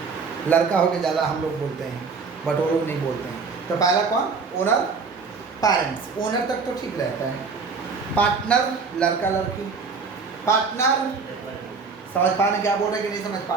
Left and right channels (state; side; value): quieter; left; 4.9 dB